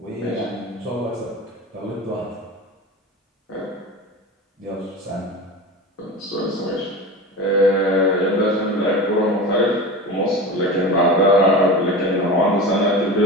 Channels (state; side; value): normal; both; correlation 0.30